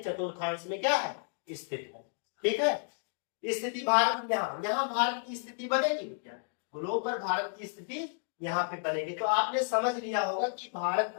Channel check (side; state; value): right; silent; 56 dB below the other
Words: चतुर्थांश में क्या है, स्थित है। ठीक है, स्थिति भारत यहाँ भारत की स्थिति बनेगी क्या, गोलोक पर भारत की स्थिति यहाँ पे बनेगी। तो आपने समझ लिया होगा कि भारत